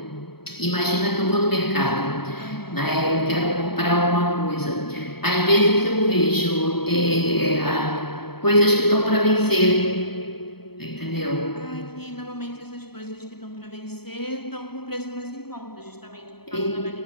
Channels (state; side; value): late; right; 0.97 ms